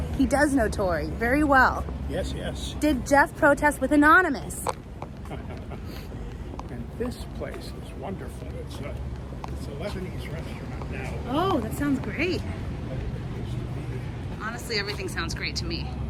He does know Tori very well. Yes, yes. Did Jeff protest with Anonymous? And this place is wonderful. It's a Lebanese restaurant now. Oh, that sounds great. Honestly, everything sounds great to me.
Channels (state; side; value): identical; both; correlation 1.00